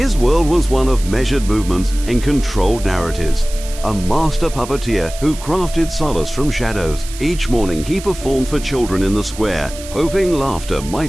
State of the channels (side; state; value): right; noise; hiss, 14 dB below the sound